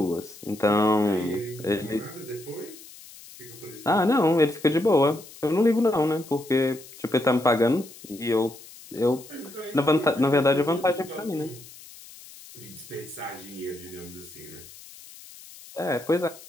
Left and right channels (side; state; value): left; noise; hiss, 19 dB below the sound